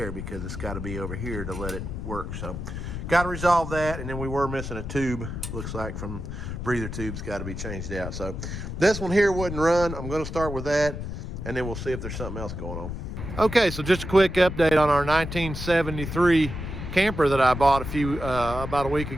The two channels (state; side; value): noise; left; rumble, 6 dB below the sound